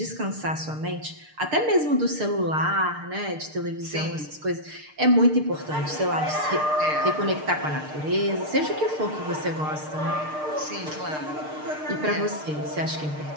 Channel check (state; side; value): late; left; 6.6 ms